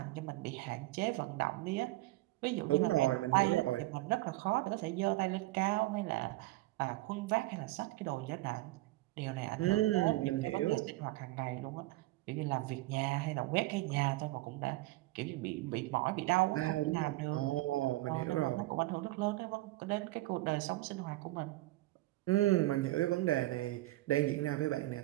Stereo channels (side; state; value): left; quieter; 18.7 dB